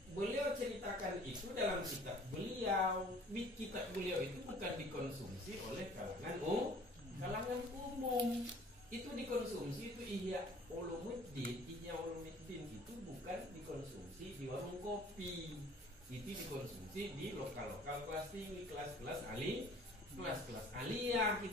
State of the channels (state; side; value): normal; both; correlation 0.51